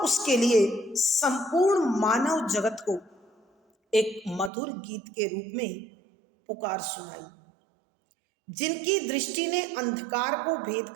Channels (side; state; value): left; drops out; at 4.5 s